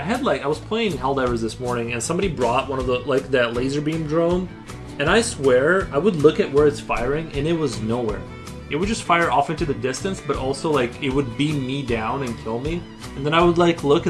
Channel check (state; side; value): identical; both; correlation 1.00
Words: was playing Helldivers this morning, and somebody brought one of the that laser beam drone, and I swear I would look at where it's firing, and it was nowhere. It would just fire off into the distance, but also like it would beam me down and kill me, and then I would like look,